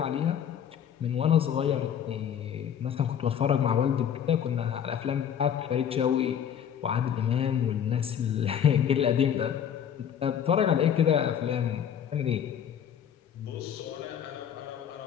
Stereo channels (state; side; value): quieter; right; 8.8 dB